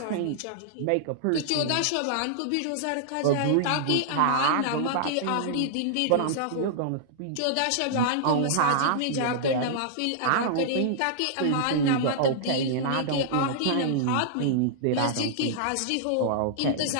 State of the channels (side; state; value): both; different; correlation -0.02